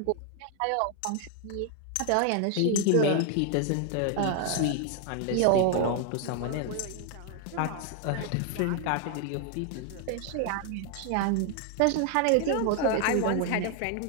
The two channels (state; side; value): different; both; correlation 0.00